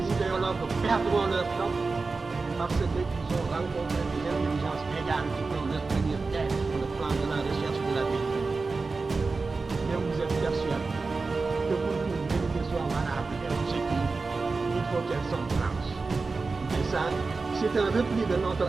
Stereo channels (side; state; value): left; quieter; 4.0 dB